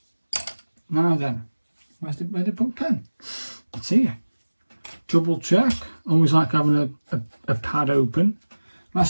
Now then, where did I put pen? It's here. Double check. Always like having a pad open.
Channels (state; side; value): inverted; both; correlation -1.00